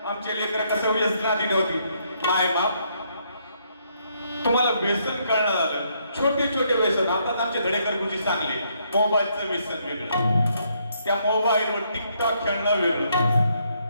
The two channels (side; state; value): both; inverted; correlation -0.73